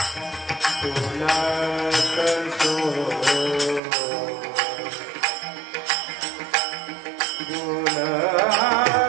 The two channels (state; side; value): drops out; left; at 3.8 s